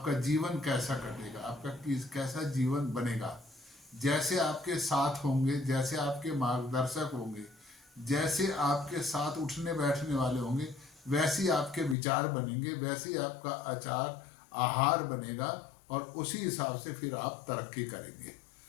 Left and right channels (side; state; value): right; drops out; at 12.0 s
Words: जीवन कैसा कटेगा, आपका कैसा जीवन बनेगा। जैसे आपके साथ होंगे, जैसे आपके मार्गदर्शक होंगे, जैसे आपके साथ उठने बैठने वाले होंगे, वैसी आपके विचार बनेंगे, वैसी आपका आचार आहार बनेगा और उसी हिसाब से फिर आप तरक्की करेंगे।